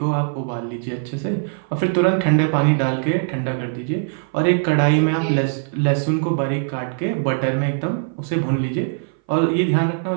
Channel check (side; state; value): left; silent; 59 dB below the other